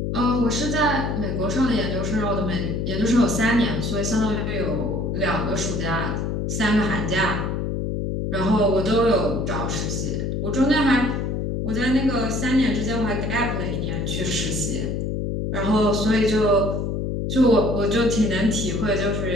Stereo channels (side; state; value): left; noise; hum, 1 dB below the sound